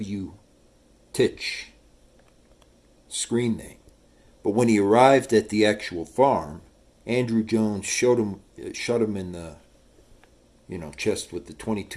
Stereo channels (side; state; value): both; identical; correlation 1.00